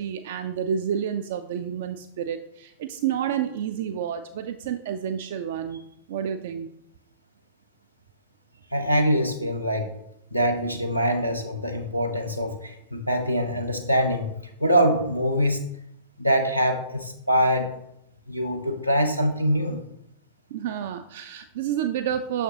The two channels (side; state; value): both; inverted; correlation -0.62